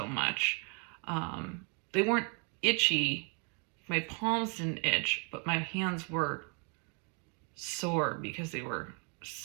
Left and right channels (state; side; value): quieter; left; 36.8 dB